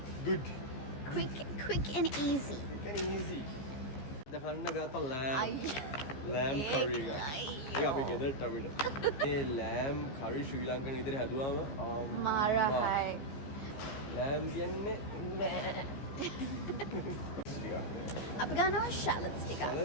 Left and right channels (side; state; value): right; late; 15 ms